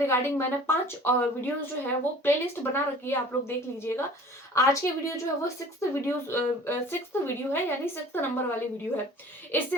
मैंने 5 वीडियोस जो है वो प्लेलिस्ट बना रखी है, आप लोग देख लीजिएगा। आज की वीडियो जो है वो सिक्स्थ वीडियो है, यानी सिक्स्थ नंबर वाली वीडियो है। इससे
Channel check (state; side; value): normal; both; correlation 0.46